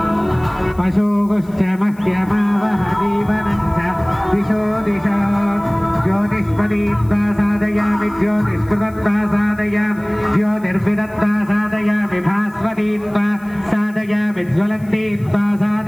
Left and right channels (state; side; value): noise; left; hiss, 28 dB below the sound